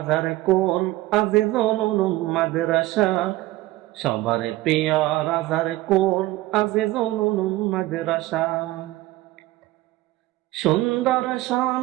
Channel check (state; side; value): quieter; left; 17.6 dB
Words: কোল আজিজুল উলুম মাদ্রাসা। সবার প্রিয় রাজার কোল আজিজুল উলুম মাদ্রাসা। সুন্দর